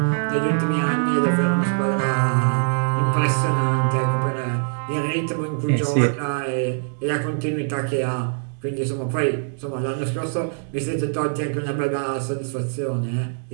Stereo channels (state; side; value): silent; left; 64 dB below the other